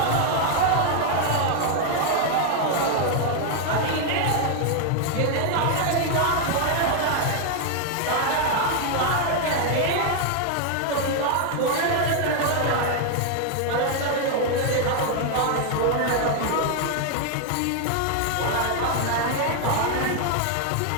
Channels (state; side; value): different; both; correlation 0.00